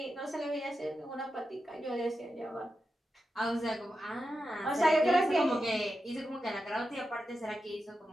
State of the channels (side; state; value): both; normal; correlation 0.89